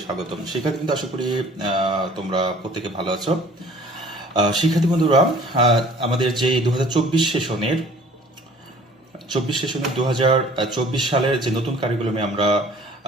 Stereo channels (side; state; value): both; normal; correlation 0.51